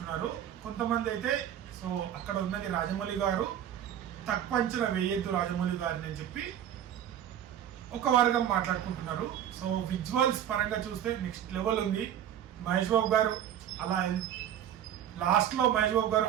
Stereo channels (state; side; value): quieter; left; 10.4 dB